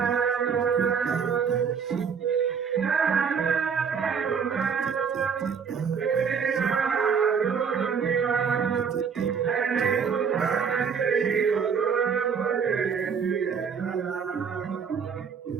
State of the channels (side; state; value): left; quieter; 6.5 dB